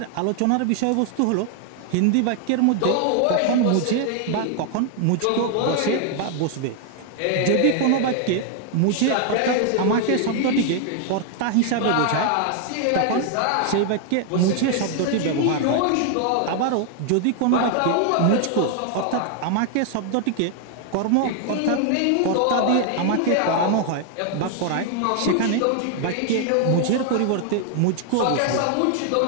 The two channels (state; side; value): different; both; correlation 0.00